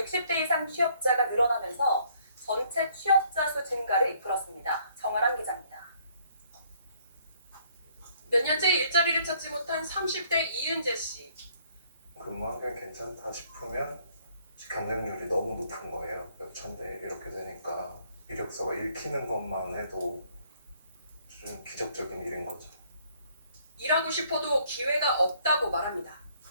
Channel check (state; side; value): inverted; both; correlation -0.64